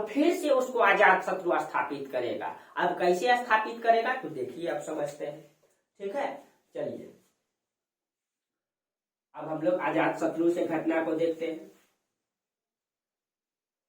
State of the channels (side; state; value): both; identical; correlation 1.00